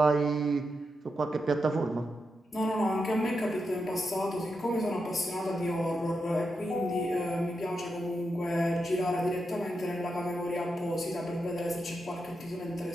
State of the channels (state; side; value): normal; both; correlation 0.86